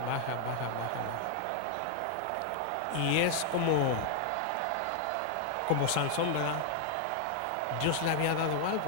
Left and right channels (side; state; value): both; different; correlation 0.00